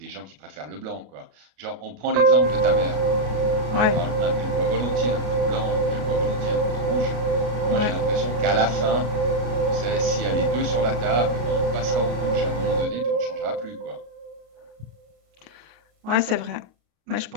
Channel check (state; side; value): late; left; 33 ms